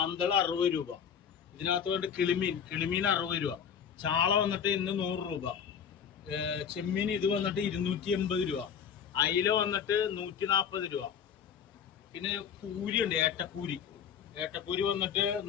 60 രൂപ. ഇതിനകത്ത് വേണ്ട കിളിമീൻ 60 രൂപ, ചാള വന്നിട്ട് ഇന്ന് 100 രൂപ, ചെമ്മീൻ ഇത് വന്നിട്ട് 280 രൂപ, അയില വന്നിട്ട് 140 രൂപ. പിന്നെ കൂരി ഉണ്ട്, ഏട്ടക്കൂരി വന്നിട്ട്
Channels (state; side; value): quieter; right; 7.7 dB